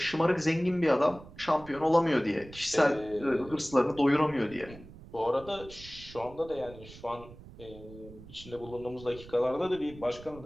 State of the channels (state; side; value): noise; right; rumble, 18 dB below the sound